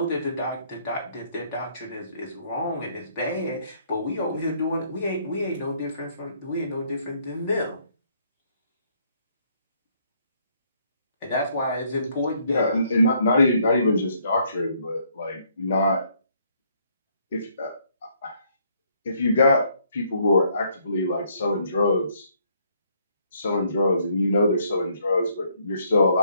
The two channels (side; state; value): both; inverted; correlation -0.68